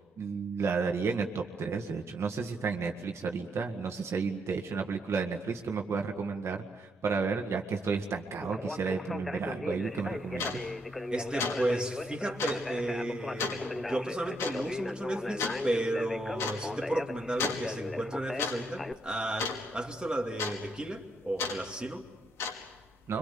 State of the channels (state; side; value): normal; both; correlation 0.76